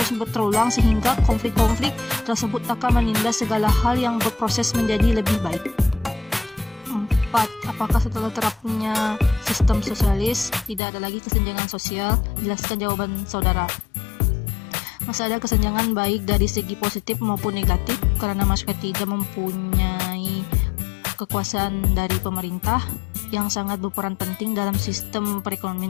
berulang sehingga konflik-konflik tersebut akan menindas segala hal yang berproses menjadi lebih baik. 4. Apakah setelah terapnya sistem sosialis tidak ada lagi kesenjangan sosial? Jelaskan jawaban saudara. Masih ada kesenjangan baik dari segi positif maupun negatif karena masyarakat tidak mempunyai kekuasaan dari pemerintah yang sangat berperan penting dalam sistem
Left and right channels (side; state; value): right; drops out; at 10.8 s